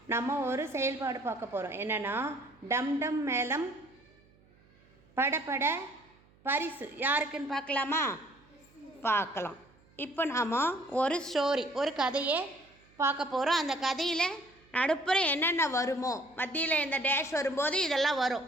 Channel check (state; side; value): noise; right; hum, 30 dB below the sound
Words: நம்ம ஒரு செயல்பாடு பார்க்க போகிறோம். என்னென்னா, டம் டம் மேளம் படபட பரிசு யாருக்குன்னு பார்க்கலாமா? பார்க்கலாம். இப்போ நாம் ஒரு ஸ்டோரி, ஒரு கதையை பார்க்க போகிறோம். அந்த கதையில் நடுப்புற என்னென்ன வருமோ, மத்தியில் இந்த டேஷ் வரும்போது இதெல்லாம்